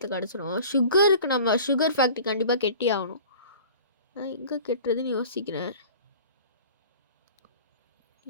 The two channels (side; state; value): both; inverted; correlation -0.43